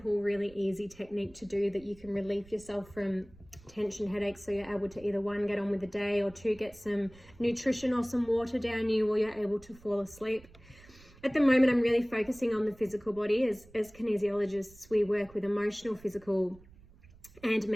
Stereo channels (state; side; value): noise; right; rumble, 24 dB below the sound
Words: really easy technique to do that you can relieve yourself from tension headaches, so you're able to either one, get on with the day, or two, get some nutrition or some water down you while you're able to fall asleep. At the moment, I'm really focusing on the physical body. As kinesiologists, we work with emotional, physical, and